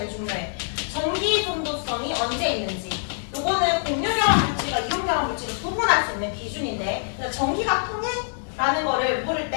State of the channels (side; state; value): right; silent; 62 dB below the other